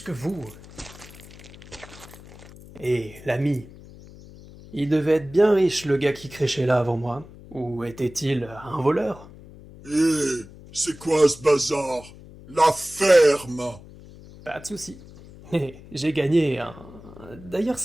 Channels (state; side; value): noise; left; hum, 19 dB below the sound